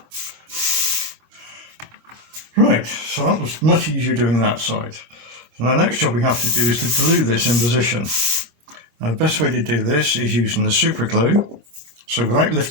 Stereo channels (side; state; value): left; late; 25 ms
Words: Right, so that was much easier doing that side. So the next job we have to do is to glue this in position. Now the best way to do this is using the super glue. So without